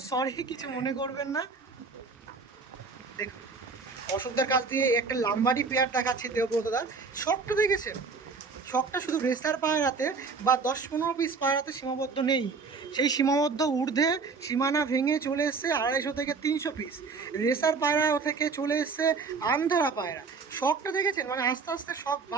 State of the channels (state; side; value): quieter; left; 4.7 dB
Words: সরি, কিছু মনে করবেন না। দেখুন অশোকদার কাছ দিয়ে একটা লাম্বাডি পেয়ার দেখাচ্ছি দেবব্রতদার। শখটা দেখেছেন? শখটা শুধু রেসার পায়রাতে বা 10-15 পিস পায়রাতে সীমাবদ্ধ নেই, সেই সীমাবদ্ধ ঊর্ধ্বে সীমানা ভেঙে চলে এসছে 250 থেকে 300 পিস রেসার পায়রা থেকে চলে এসছে আন্ধ্রা পায়রা। শখটা দেখেছেন? মানে আস্তে আস্তে শখ